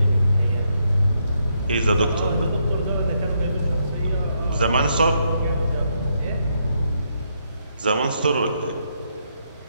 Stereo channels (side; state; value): both; inverted; correlation -0.77